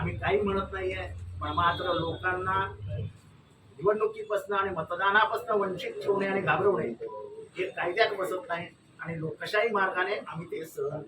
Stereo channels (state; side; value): identical; both; correlation 1.00